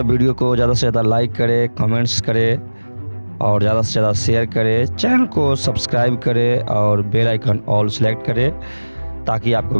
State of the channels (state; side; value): inverted; both; correlation -1.00